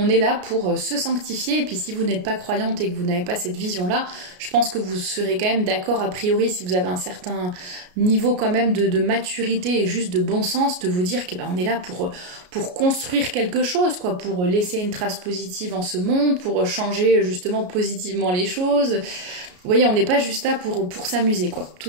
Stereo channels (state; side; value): late; left; 33 ms